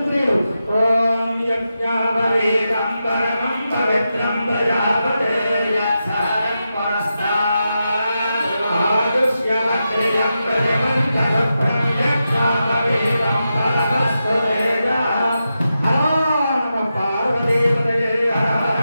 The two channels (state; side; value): inverted; both; correlation -0.89